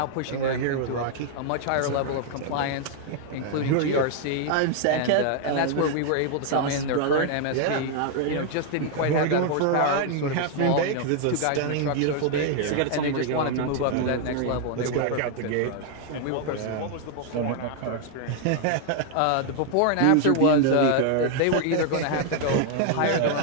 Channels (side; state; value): both; different; correlation 0.00